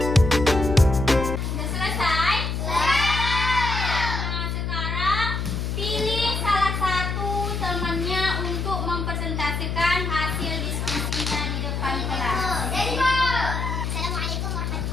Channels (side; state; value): left; noise; hum, 2 dB below the sound